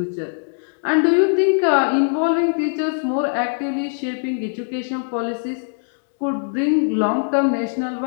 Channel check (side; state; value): right; silent; digital silence